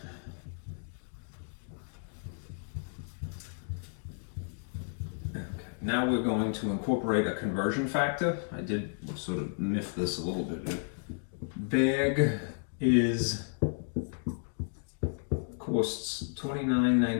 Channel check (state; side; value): silent; right; digital silence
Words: Okay. Now we're going to incorporate a conversion factor. I did sort of miff this a little bit. Bag is costs